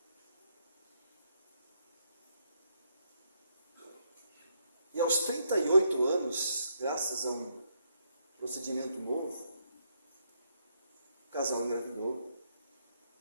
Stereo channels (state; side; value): inverted; both; correlation -0.76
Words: E aos 38 anos, graças a um procedimento novo, o casal engravidou.